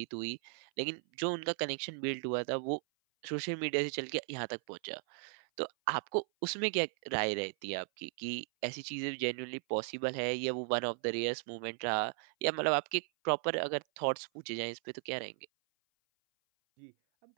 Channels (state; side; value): silent; left; 53 dB below the other